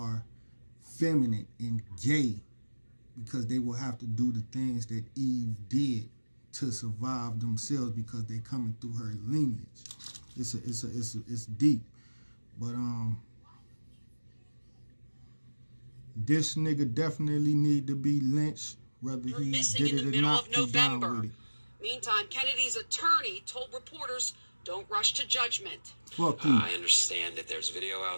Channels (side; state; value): both; inverted; correlation -1.00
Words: feminine and gay, because they will have to do the things that Eve did to survive themselves because they coming through her lineage. It's deep. But this nigga definitely need to be lynched. Whether You're he missing did in it the or middle not, of November. it. Meantime, Kennedy's attorney told reporters, don't rush to judgment. Fuck you. I understand that there's video